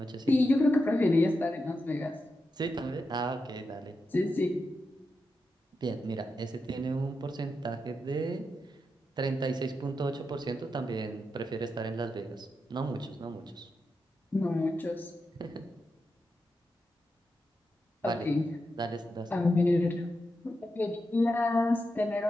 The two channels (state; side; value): normal; both; correlation 0.87